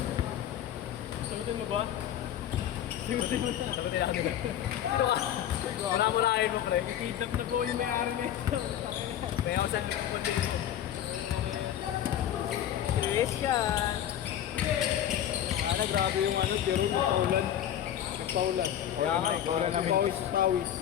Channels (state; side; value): quieter; right; 10.8 dB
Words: Sagutin mo ba? Sagutin mo na. Sagutin na kami na. Wala mo na kayo mo, pre. Kidnap na po yung may-ari na ito. Kaya ako saan mo dito. Christian. Ana, grabe yung ano, pero nagpaulan. Nagpaulan. Kaya nga, paulan namin. Pawis.